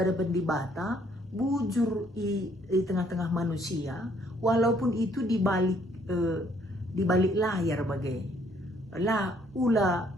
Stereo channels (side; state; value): both; normal; correlation 0.65